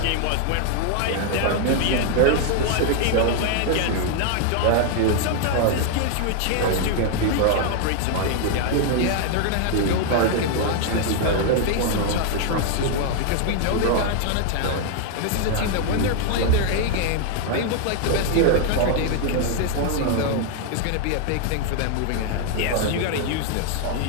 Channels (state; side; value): different; both; correlation 0.00